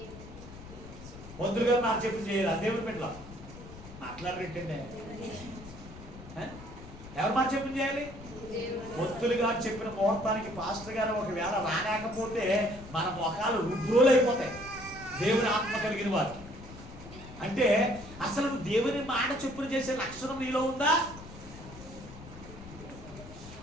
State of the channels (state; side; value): noise; left; rumble, 15 dB below the sound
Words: మంత్రులు గారు నాకు చెప్పిన చేయాలి. దేవుని పెట్టలా మాట్లాడరేంటండి, ఎవరు మాట చెప్పిన చేయాలి? భక్తులు గారు చెప్పిన ముహూర్తానికి పాస్టర్ గారు ఒకవేళ రాలేకపోతే మన మొఖాలు రుద్రోలు అయిపోతాయి. దేవుని ఆత్మ కలిగిన వారు అంటే అసలు దేవుని మాట చొప్పున చేసే లక్షణం నీలో ఉందా?